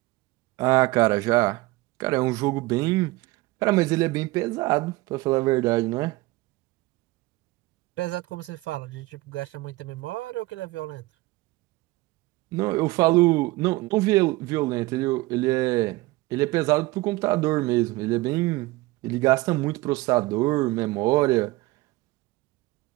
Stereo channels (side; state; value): left; quieter; 20.3 dB